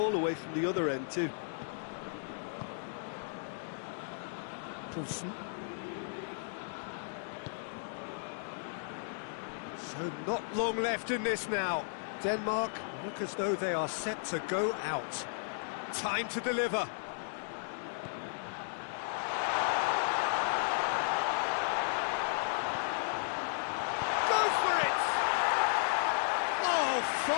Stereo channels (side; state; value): right; silent; digital silence